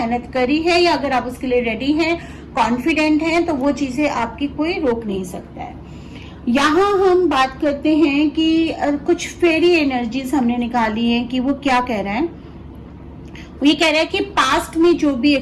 करी है या अगर आप उसके लिए रेडी हैं, कॉन्फिडेंट हैं, तो वो चीजें आपकी कोई रोक नहीं सकता है। यहाँ हम बात करते हैं कि कुछ फेरी एनर्जीज हमने निकाली है कि वो क्या कह रहा है। वो ये कह रहा है कि पास्ट में जो भी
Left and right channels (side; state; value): both; identical; correlation 1.00